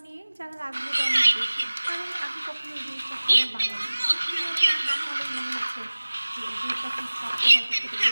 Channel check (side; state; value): both; inverted; correlation -1.00